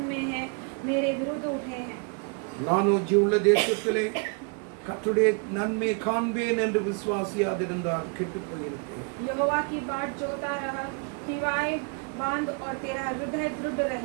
में हैं, मेरे विरुद्ध उठे हैं। நானோ ஜீவுள்ள தேசத்திலே கர்த்தருடைய நன்மையை காண்பேன் என்று விசுவாசியாதிருந்தால் கெட்டு போயிருப்பேன். यहोवा की बाट जोता रहा, हिवाए बांध और तेरा हृदय दृढ़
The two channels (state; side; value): quieter; left; 37.0 dB